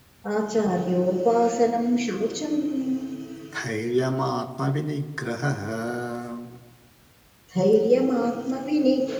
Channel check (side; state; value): both; identical; correlation 1.00